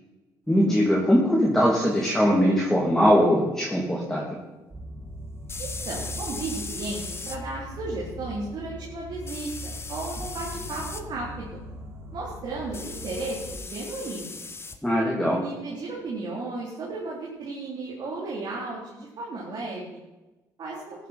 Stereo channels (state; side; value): normal; both; correlation 0.79